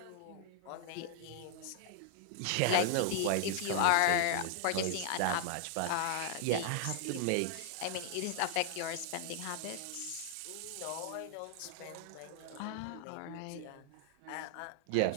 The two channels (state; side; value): different; both; correlation 0.00